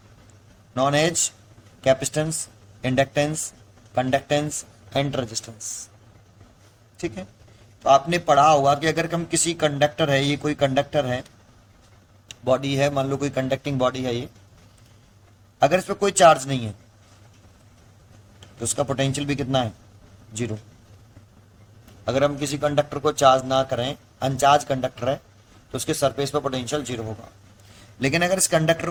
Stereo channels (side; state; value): both; identical; correlation 1.00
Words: known as capacitance, inductance, conductance and resistance. ठीक है, तो आपने पढ़ा होगा कि अगर हम किसी कंडक्टर है, ये कोई कंडक्टर है, बॉडी है, मान लो कोई कंडक्टिंग बॉडी है ये, अगर इस पर कोई चार्ज नहीं है तो उसका पोटेंशियल भी कितना है, जीरो। अगर हम किसी कंडक्टर को चार्ज ना करें, अनचार्ज कंडक्टर है, तो उसके सरफेस पर पोटेंशियल जीरो होगा। लेकिन अगर इस कंडक्टर